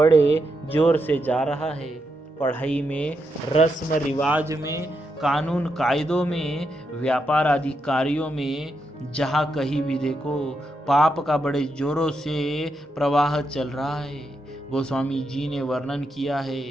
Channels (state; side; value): normal; both; correlation 0.83